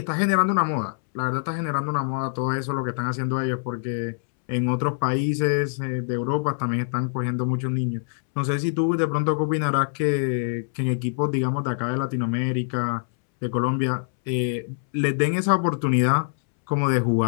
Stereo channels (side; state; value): right; silent; 62 dB below the other